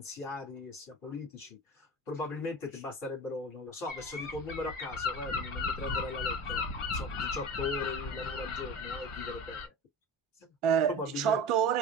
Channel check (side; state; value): both; normal; correlation 0.33